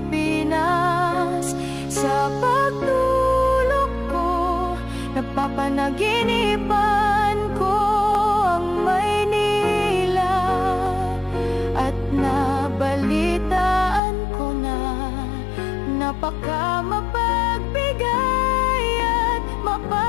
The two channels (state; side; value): drops out; right; at 14.0 s